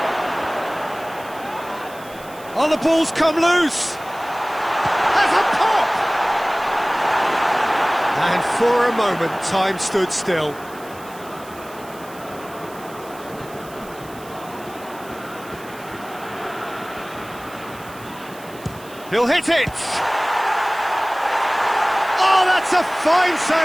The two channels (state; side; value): noise; right; hiss, 21 dB below the sound